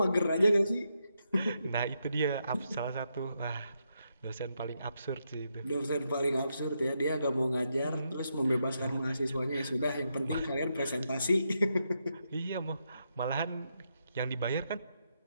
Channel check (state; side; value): inverted; both; correlation -0.82